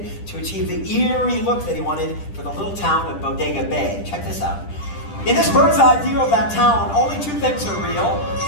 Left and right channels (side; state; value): right; late; 10 ms